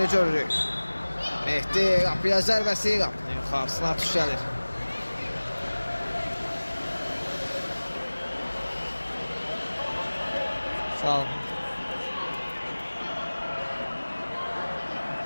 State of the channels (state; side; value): inverted; both; correlation -1.00